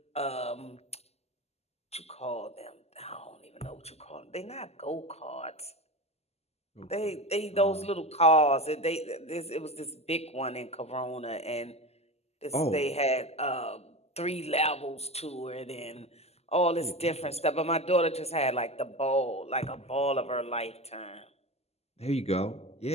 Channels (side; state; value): right; late; 0.30 ms